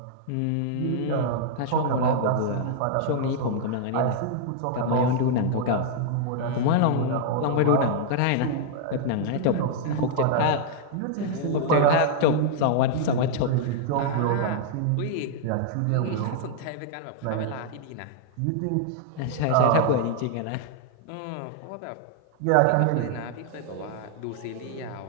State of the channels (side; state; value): both; different; correlation -0.01